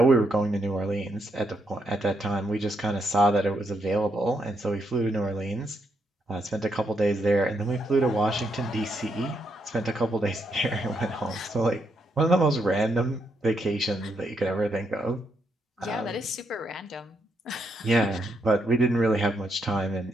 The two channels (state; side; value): normal; both; correlation 0.78